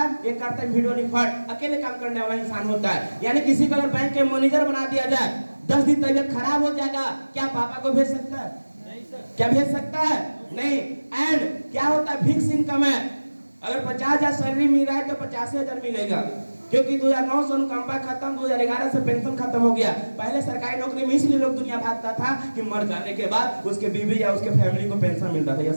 ये करता है वीडियो रिकॉर्ड, अकेले काम करने वाला इंसान होता है। यानी किसी को अगर बैंक के मैनेजर बना दिया जाए, 10 दिन तबियत खराब हो जाएगा, क्या पापा को भेज सकता है? क्या भेज सकता है? नहीं। एंड क्या होता है, फिक्स इनकम है। अगर 50,000 सैलरी मिल रहा है तो 85,000 मिलेगा, क्योंकि 2009 से अनुकंपा खत्म, 2011 से पेंशन खत्म हो गया। पहले सरकारी नौकरी में इसलिए लोग दुनिया भागता था कि मर जाने के बाद उसके बीवी या उसके फैमिली को पेंशन मिलता था।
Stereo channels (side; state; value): both; inverted; correlation -1.00